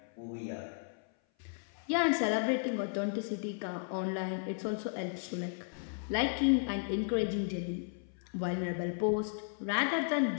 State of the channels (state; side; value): silent; right; 55 dB below the other